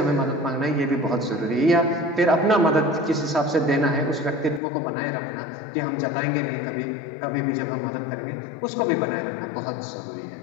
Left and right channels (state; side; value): drops out; right; at 4.6 s